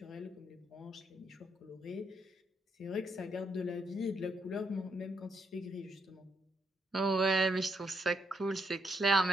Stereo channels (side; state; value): both; normal; correlation 0.76